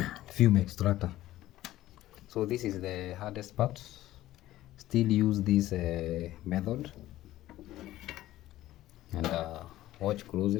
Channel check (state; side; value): quieter; right; 15.0 dB